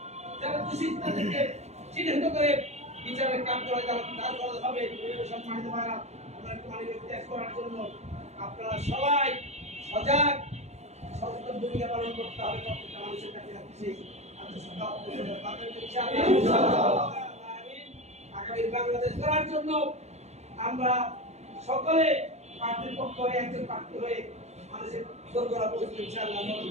যারা দোষী তাদেরকে চিহ্নিত করে বিচারের কাজ করে তারা হবে। সম্মানিত ভাইরা, আমরা পানি ত্যাগ করার জন্য আপনারা সবাই সজাগ সচেতন ভূমিকা পালন করতে হবে। প্রত্যেকটা মানুষের কাছে রাখছি আগামী বাংলাদেশ গড়ার জন্য আমরা সকলে প্রার্থীর পক্ষ হয়ে একজন প্রার্থী হয়ে মানুষের দোরগোড়া পৌঁছবে ইনশাআল্লাহ।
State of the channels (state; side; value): late; left; 0.32 ms